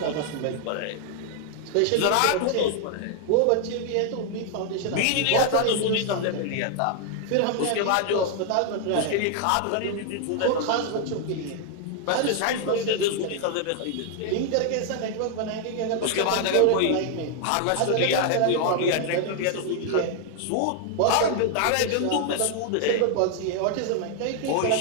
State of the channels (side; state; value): both; different; correlation 0.00